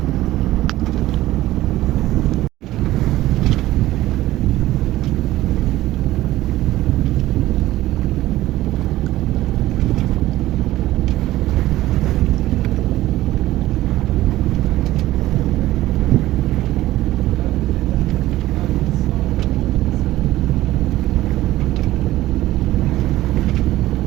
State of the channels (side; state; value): left; quieter; 15.8 dB